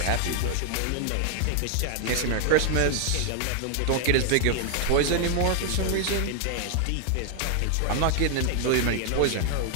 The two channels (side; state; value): both; different; correlation 0.00